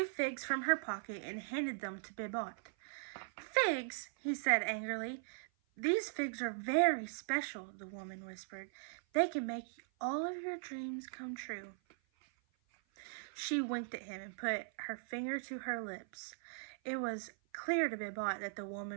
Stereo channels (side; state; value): left; silent; 51 dB below the other